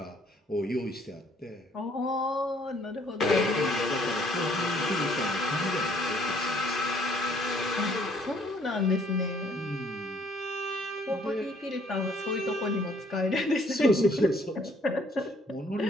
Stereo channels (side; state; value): both; normal; correlation 0.62